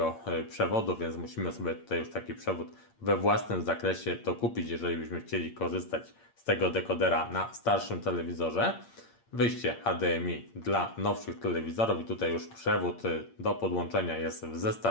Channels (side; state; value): right; late; 8.7 ms